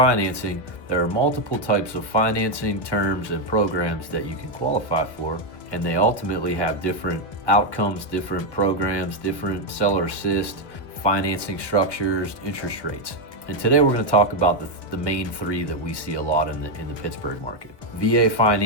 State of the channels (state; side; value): late; right; 1.1 ms